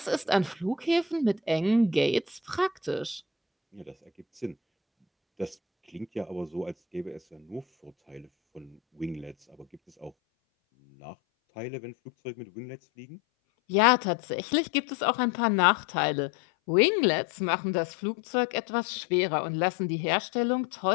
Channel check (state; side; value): drops out; right; at 10.1 s